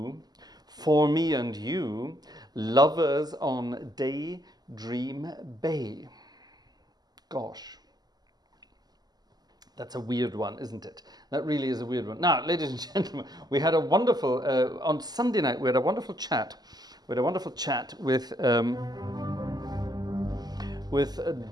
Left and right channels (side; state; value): left; late; 0.20 ms